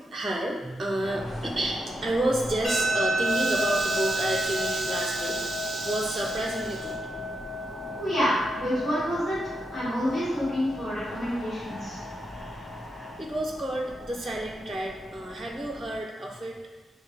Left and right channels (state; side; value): normal; both; correlation 0.83